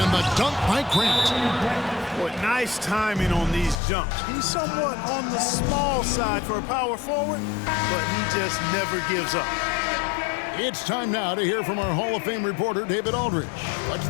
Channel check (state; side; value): drops out; right; at 3.8 s